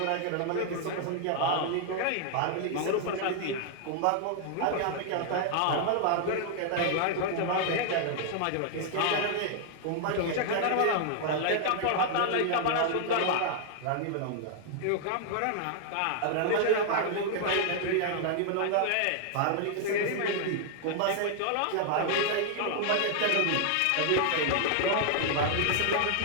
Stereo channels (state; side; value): different; both; correlation 0.00